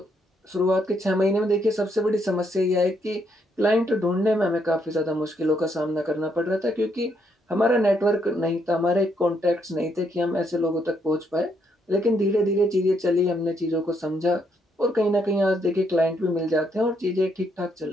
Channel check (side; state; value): both; normal; correlation 0.74